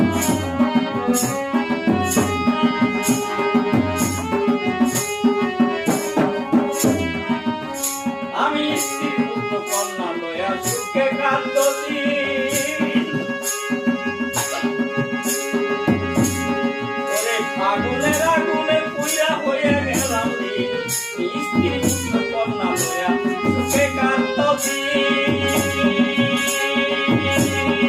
আমি স্ত্রী পুত্র কন্যা লয়া সুখে কাঁদছি। ওরে ফাগুনের আগুনে পুড়িয়া হইয়া গেলাম ঋণ, স্ত্রী পুত্র কন্যা লয়া সুখে কাঁদছি।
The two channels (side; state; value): both; identical; correlation 1.00